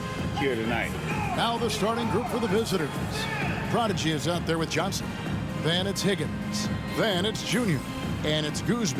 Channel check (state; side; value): identical; both; correlation 1.00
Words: here tonight. Now the starting group for the visitors. Prodigy is out there with Johnson. Then it's Higgins. Then it's Junior. And it's